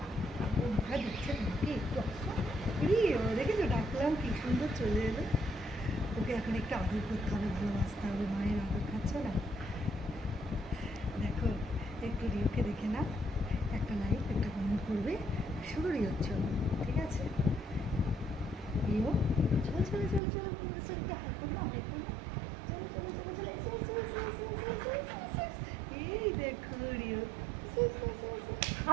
বন্ধুরা দেখছে তোমাকে, একটু আসো। রিও দেখেছো, ডাকলাম কি সুন্দর চলে এলো। ওকে এখন একটু আদর করতে হবে, ভালোবাসতে হবে, মায়ের আদর খাচ্ছ না? দেখো একটু রিওকে দেখে না, একটা লাইক একটা কমেন্ট করবে, শুরু রিওর জন্য, ঠিক আছে? রিও চলো চলো চলো চলো, এই দেখো রিও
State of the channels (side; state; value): left; drops out; at 20.2 s